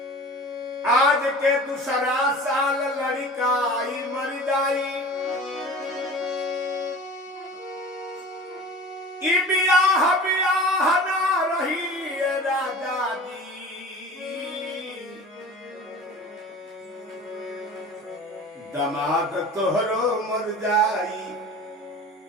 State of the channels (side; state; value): both; normal; correlation 0.39